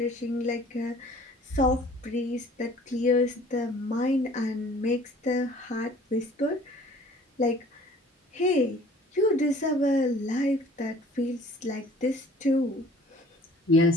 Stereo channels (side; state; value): both; normal; correlation 0.51